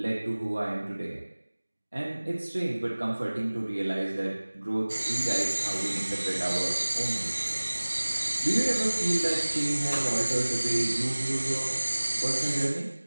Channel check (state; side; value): inverted; both; correlation -1.00